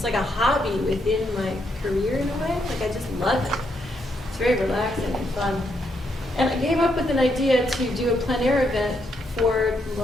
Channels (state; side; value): normal; both; correlation 0.77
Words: hobby within my career in a way. Like I just love it. It's very relaxing and fun. And I came up with an idea to do a plein air event for